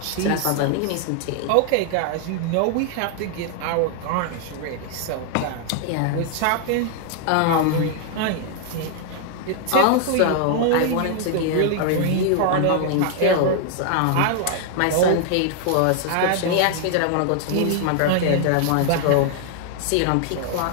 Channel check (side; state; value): both; different; correlation 0.00